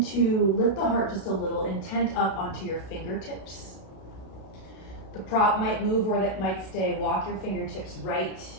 to lift the heart just a little, intent up onto your fingertips. The prop might move or that might stay. Walk your fingertips right.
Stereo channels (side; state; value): right; late; 32 ms